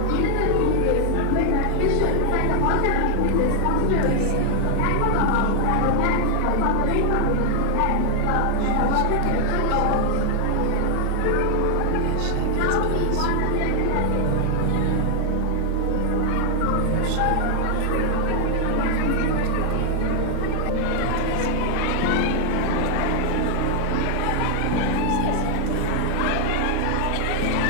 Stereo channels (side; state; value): both; different; correlation 0.00